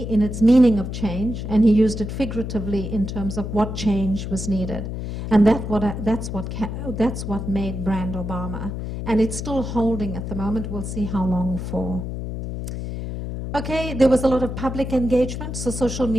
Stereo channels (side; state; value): left; noise; hum, 6 dB below the sound